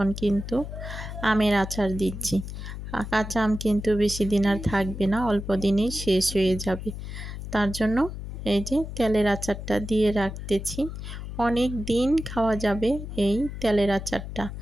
কিন্তু আমের আচার দিচ্ছি। কাঁচা আম কিন্তু বেশি দিন আর থাকবে না, অল্প দিনেই শেষ হয়ে যাবে। তার জন্য এই যে তেলের আচারটা দিয়ে রাখতেছি। অনেক দিন খাওয়া যাবে এই তেলের আচারটা।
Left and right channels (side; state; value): left; noise; hum, 8 dB below the sound